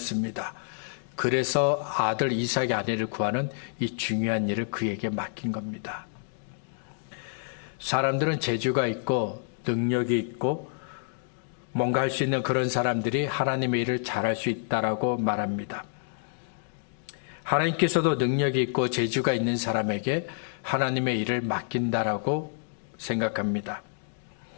그래서 아들 이삭의 아내를 구하는 이 중요한 일을 그에게 맡긴 겁니다. 사람들은 재주가 있고 능력이 있고 뭔가 할 수 있는 그런 사람들이 하나님의 일을 잘할 수 있다라고 말합니다. 하나님께서도 능력이 있고 재주가 있는 사람에게 하나님의 일을 맡긴다라고 생각합니다.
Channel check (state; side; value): silent; right; digital silence